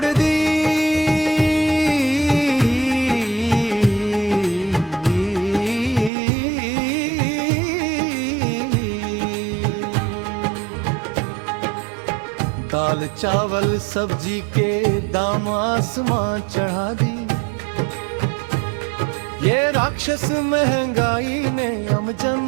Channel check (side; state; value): left; drops out; at 6.1 s